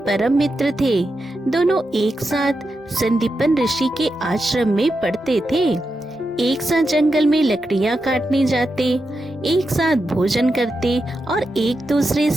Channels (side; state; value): both; normal; correlation 0.88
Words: परम मित्र थे। दोनों एक साथ संदीपन ऋषि के आश्रम में पढ़ते थे। एक साथ जंगल में लकड़ियाँ काटने जाते, एक साथ भोजन करते और एक दूसरे